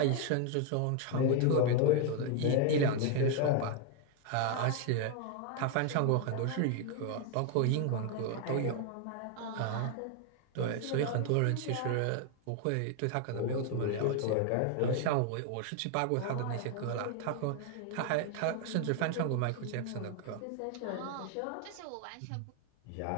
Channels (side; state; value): both; different; correlation 0.01